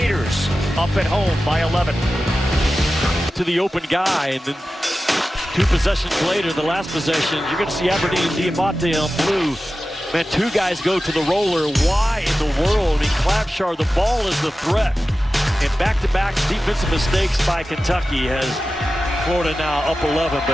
up at home by 11. To the open guy, and then 2 possessions later, the last possession, you're going to see Aberdeen and Diabate on blue. Man, 2 guys go to the roller. Why in the world? In Clavshar, the ball is the threat. And back-to-back defensive mistakes by Kentucky has Florida now up 11,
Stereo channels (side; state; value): both; normal; correlation 0.94